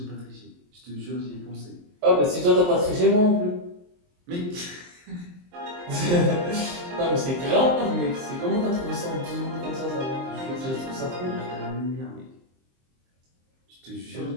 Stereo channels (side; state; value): left; late; 23 ms